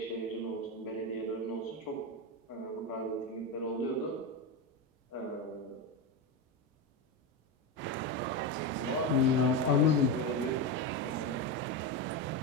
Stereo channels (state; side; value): normal; both; correlation 0.14